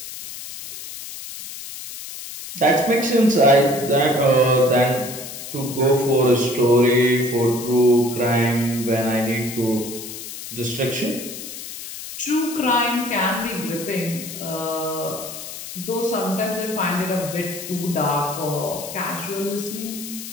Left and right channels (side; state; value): left; noise; hiss, 10 dB below the sound